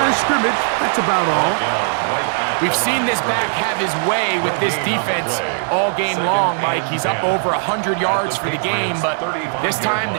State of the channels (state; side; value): silent; left; digital silence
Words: of scrimmage. That's about all. We've seen this back have his way with this defense all game long, Mike. He's up over 100 yards for the game, but this time